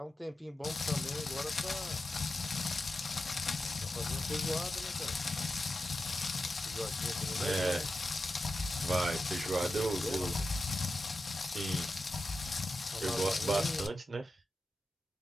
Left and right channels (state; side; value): normal; both; correlation 0.91